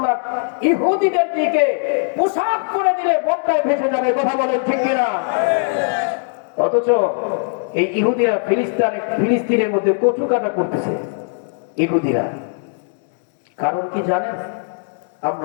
ইহুদিদের দিকে পোশাক করে দিলে বন্যায় ভেসে যাবে। কথা বলেন ঠিক কিনা? অথচ এই ইহুদিরা ফিলিস্তিনের মধ্যে কচু কাটা করতেছে। ইহুদিরা কারণ কি জানেন?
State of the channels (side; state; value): right; silent; digital silence